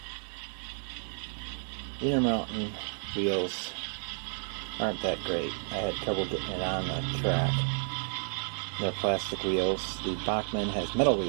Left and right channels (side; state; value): left; silent; 57 dB below the other